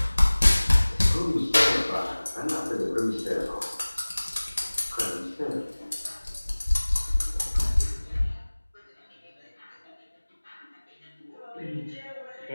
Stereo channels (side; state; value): both; inverted; correlation -1.00